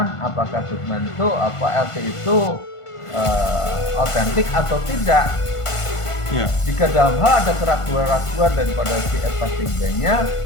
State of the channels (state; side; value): late; right; 1.5 ms